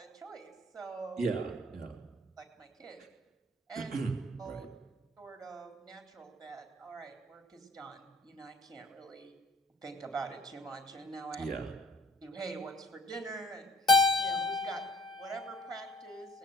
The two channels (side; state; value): both; normal; correlation 0.54